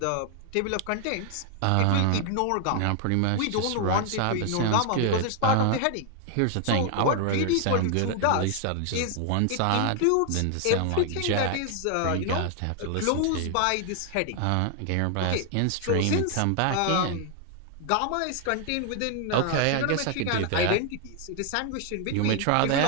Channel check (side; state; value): both; different; correlation 0.00